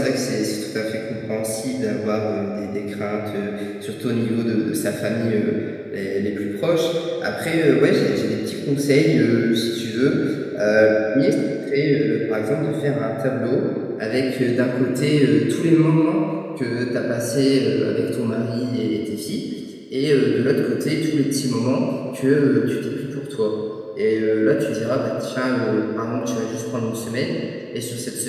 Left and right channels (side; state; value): both; identical; correlation 1.00